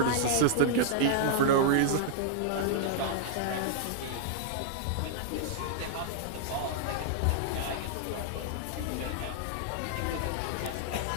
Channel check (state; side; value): different; both; correlation -0.01